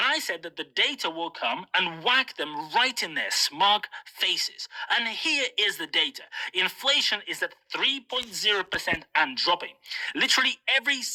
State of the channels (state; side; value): identical; both; correlation 1.00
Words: I said that the data will come and whack them right in their smug faces. And here is the data. Inflation is at 3.0% and dropping. Literally every